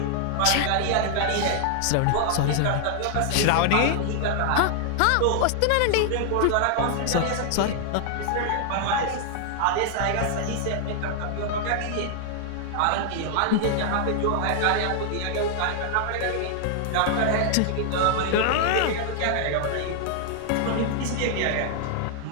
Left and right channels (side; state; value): both; different; correlation 0.00